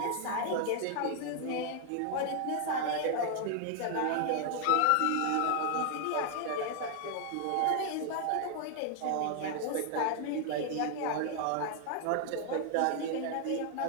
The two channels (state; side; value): different; both; correlation 0.00